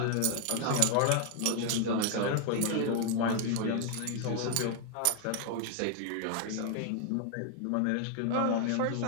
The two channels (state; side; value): different; both; correlation 0.00